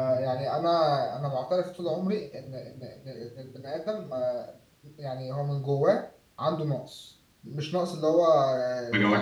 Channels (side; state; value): both; identical; correlation 1.00